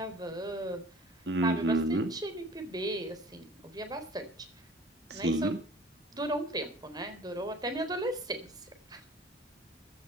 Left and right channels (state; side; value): normal; both; correlation 0.46